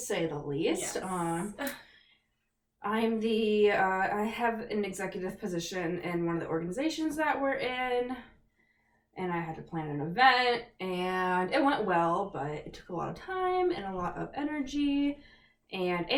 the least. Yes. I have an executive position in one of the organizations that we're in, and I had to plan an event, and it went well, but it took a lot of time and a lot of energy, and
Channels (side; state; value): both; identical; correlation 1.00